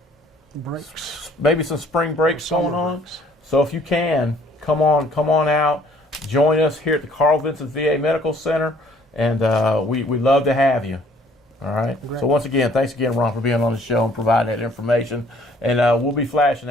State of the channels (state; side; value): normal; both; correlation 0.59